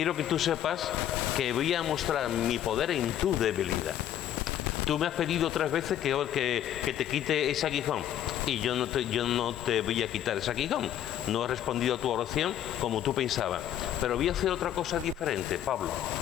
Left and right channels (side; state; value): right; quieter; 11.1 dB